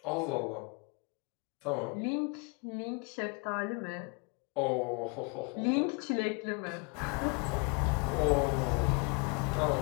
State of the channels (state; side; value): quieter; right; 33.0 dB